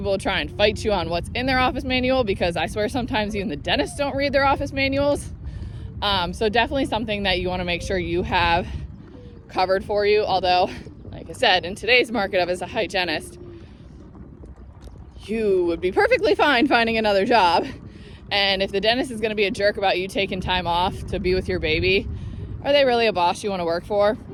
try and fight you on what's in their office manual, because I swear sometimes even the dentists don't read their office manuals. So definitely something that you want to make sure you have covered for you. Although, like I said, in today's market as a hygienist, you would be perfectly fine finding another job. And if the dentist is going to be a jerk about you taking time off to be with your baby, are they really a boss you want to work for?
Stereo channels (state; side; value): identical; both; correlation 1.00